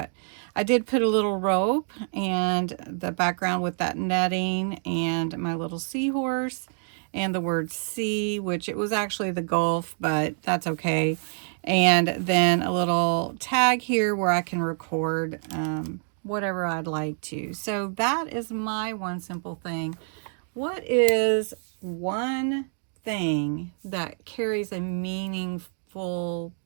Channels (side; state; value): left; silent; 60 dB below the other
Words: I did put a little rope and the background with that netting and my little seahorse and the word sea, which it was actually the Gulf, but that's okay. And then a little tag here where I can record whatever I'd like to. So that is my one simple thing. What is one thing that carries a meaningful,